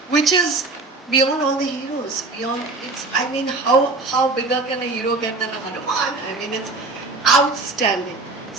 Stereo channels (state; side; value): quieter; left; 3.3 dB